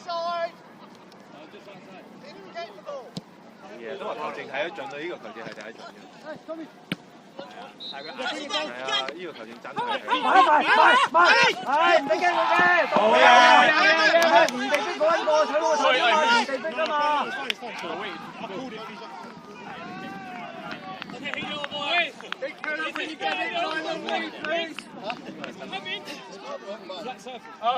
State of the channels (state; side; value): identical; both; correlation 1.00